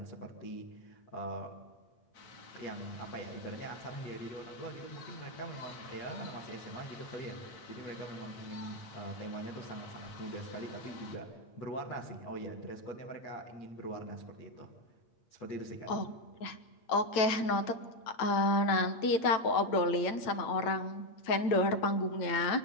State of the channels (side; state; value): right; late; 9.0 ms